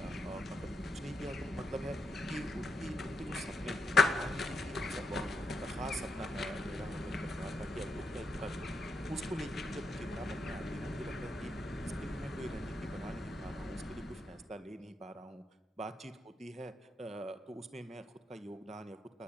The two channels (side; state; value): both; normal; correlation 0.81